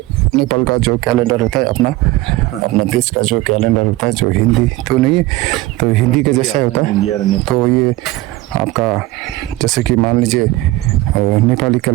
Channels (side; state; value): left; quieter; 18.2 dB